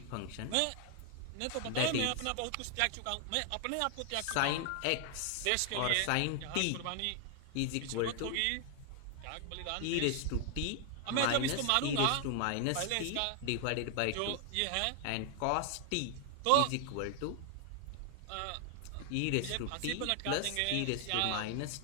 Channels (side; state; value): both; different; correlation 0.00